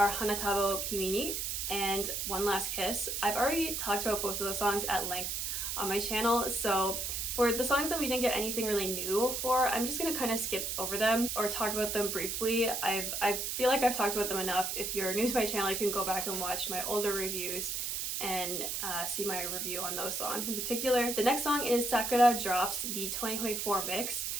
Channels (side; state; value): right; noise; hiss, 2 dB below the sound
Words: Hanatabo Kimi ni and One Last Kiss. I've already talked about both of those songs at length on my channel, so For the songs that we didn't get anything really new for, I'm just gonna kind of skip over them or talk about them briefly. I feel like I've talked about them enough. If you're new to my channel, you can go back and watch my older reviews and see my review on those songs in particular. The next song is Sakura Drops, the 2024 mix,